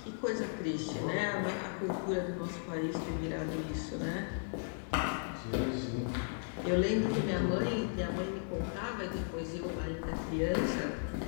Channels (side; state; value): right; silent; digital silence